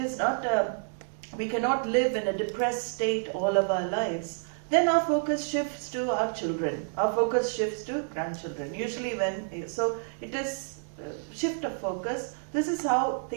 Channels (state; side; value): silent; left; digital silence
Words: not we cannot live in a depressed state all of our lives. Then our focus shifts to our children. Our focus shifts to grandchildren. Usually so it is shift of focus. This is how